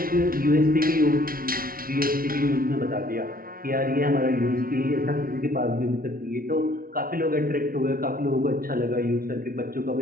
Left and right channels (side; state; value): left; late; 0.43 ms